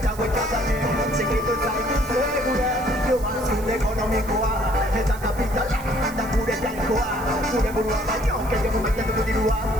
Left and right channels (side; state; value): right; noise; hiss, 18 dB below the sound